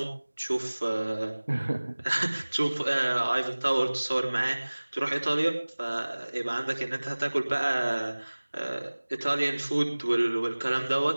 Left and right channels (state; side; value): inverted; both; correlation -1.00